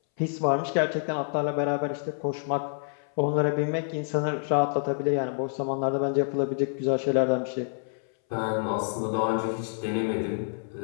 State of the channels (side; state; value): right; silent; 60 dB below the other